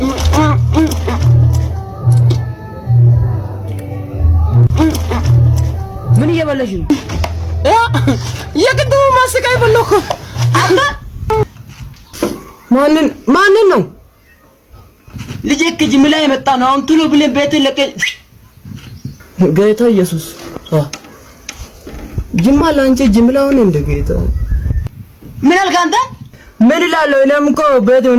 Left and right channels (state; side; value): identical; both; correlation 1.00